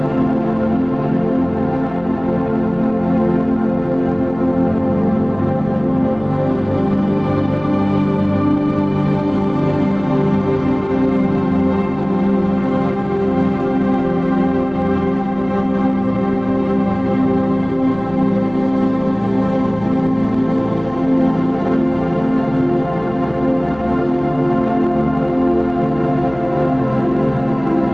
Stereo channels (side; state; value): left; noise; hum, 20 dB below the sound